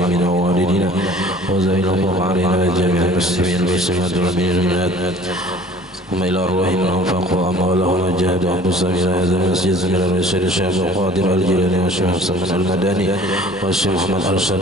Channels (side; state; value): both; normal; correlation 0.49